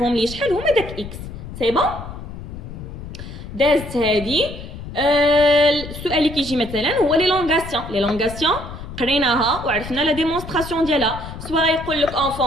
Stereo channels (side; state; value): left; noise; rumble, 11 dB below the sound